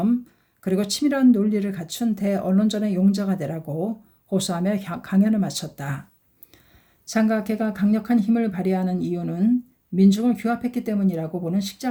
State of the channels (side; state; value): both; identical; correlation 1.00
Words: 그리고 치밀한 논리를 갖춘 대언론전의 용자가 되라고 호소하며 강연을 마쳤다. 장각회가 강력한 힘을 발휘하는 이유는 민중을 규합했기 때문이라고 보는